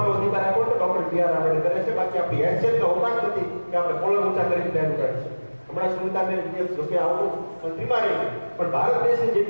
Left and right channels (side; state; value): both; inverted; correlation -1.00